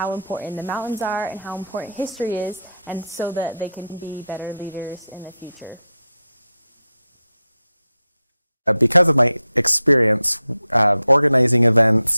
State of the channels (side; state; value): both; inverted; correlation -0.83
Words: Because of my experience organizing events